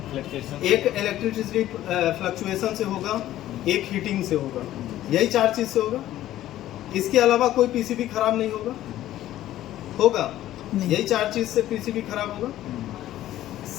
एक इलेक्ट्रिसिटी फ्लक्चुएशन से होगा, एक हीटिंग से होगा। यही 4 चीज से होगा। इसके अलावा कोई पीसीबी खराब नहीं होगा? होगा? यही 4 चीज से पीसीबी खराब होगा।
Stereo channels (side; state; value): right; quieter; 13.7 dB